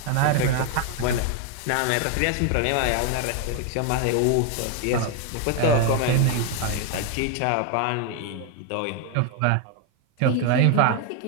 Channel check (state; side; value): different; both; correlation 0.01